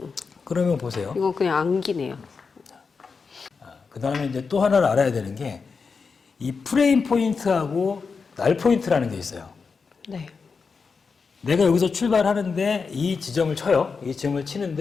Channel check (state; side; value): quieter; right; 5.1 dB